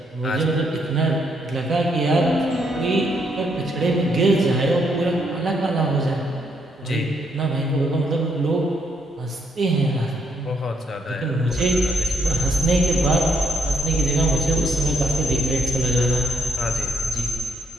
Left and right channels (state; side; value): normal; both; correlation 0.74